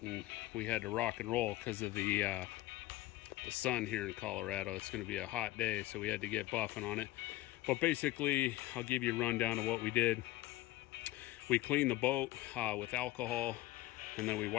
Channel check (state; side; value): quieter; right; 17.1 dB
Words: and we had to rock and roll because of the sun here in Colorado. It's going to be a hot day, so we had to get buffing on it. But basically, I'll give you a rundown of what we did. We cleaned the boat with alcohol, and then we